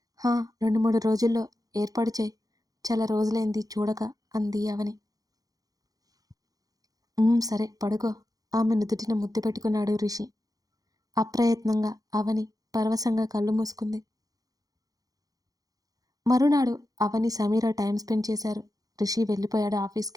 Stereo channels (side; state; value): left; late; 0.18 ms